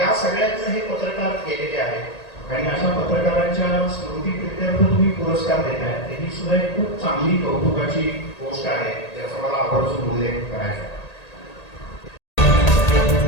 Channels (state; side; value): late; right; 1.8 ms